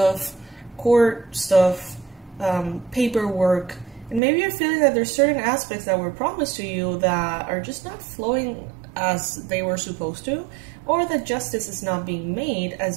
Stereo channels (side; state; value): left; drops out; at 4.2 s